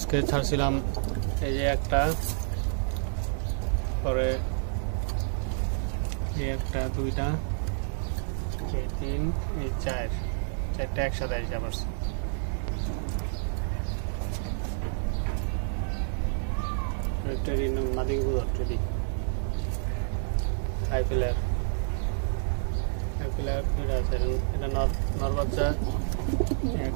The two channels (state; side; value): silent; left; digital silence